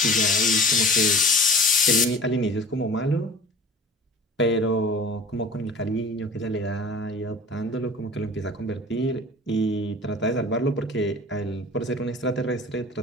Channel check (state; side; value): normal; both; correlation 0.41